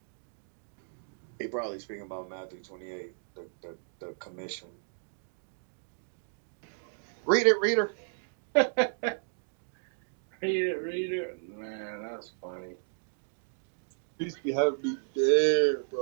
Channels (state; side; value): silent; left; digital silence